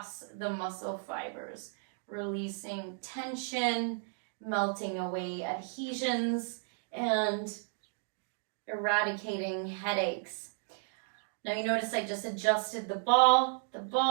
the muscle fibers, releasing tension, melting away adhesions, and eradicating headaches. Now you notice I just adjusted the ball. The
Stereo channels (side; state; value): left; silent; 55 dB below the other